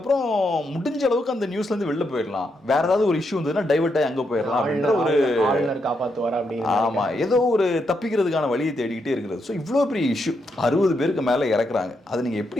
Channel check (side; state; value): both; normal; correlation 0.81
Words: முடிஞ்ச அளவுக்கு அந்த நியூஸ்ல இருந்து வெளில போயிடலாம், வேற ஏதாவது ஒரு இஷ்யூ இருந்ததுன்னா டைவர்ட் ஆகி அங்க போயிடலாம் அப்படின்ற ஒரு காப்பாத்துவாரா அப்படின்னு. ஆமா, ஏதோ ஒரு தப்பிக்கிறதுக்கான வழியை தேடிக்கிட்டே இருக்கிறது. ஸோ இவ்வளோ பெரிய இஷ்யூ, 60 பேருக்கு மேல இறக்குறாங்க, அதை நீங்க